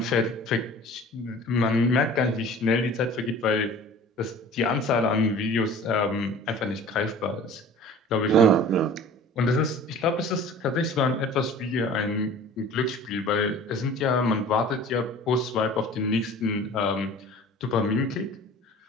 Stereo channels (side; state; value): both; normal; correlation 0.44